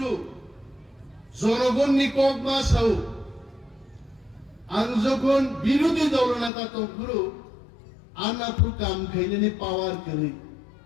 জনগণ নিকক মা সাউ আং যখন বিরোধী দলনেতা তখরু আনাপুর কাম খাইলেনি পাওয়ার করি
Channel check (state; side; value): drops out; right; at 6.5 s